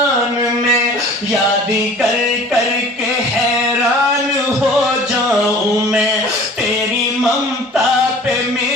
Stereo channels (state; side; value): normal; both; correlation 0.45